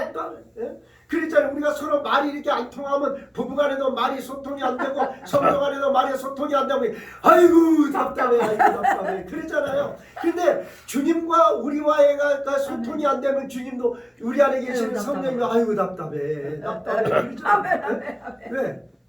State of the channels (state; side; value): identical; both; correlation 1.00